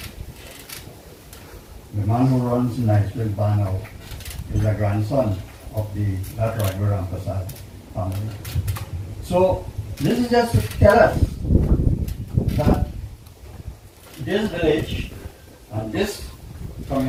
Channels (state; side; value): identical; both; correlation 1.00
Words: The man who runs Niceville Bar now is a grandson of that Ragbar Rampasad family. So this is just to tell us that this village and this